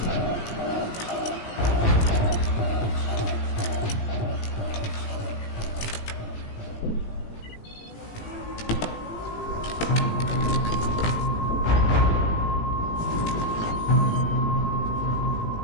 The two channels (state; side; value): late; right; 18 ms